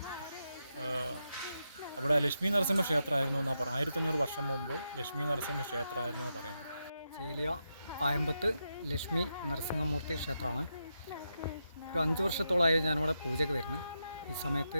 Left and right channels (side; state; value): both; inverted; correlation -0.85